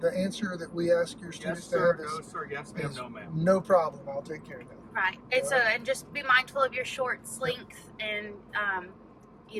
answer that we ask your Yes, students to sir. have No, is sir. Yes, ma'am. No, ma'am. no problem. I'll take care of that. Right. And so, and just be mindful of your shorts length and,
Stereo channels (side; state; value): both; identical; correlation 1.00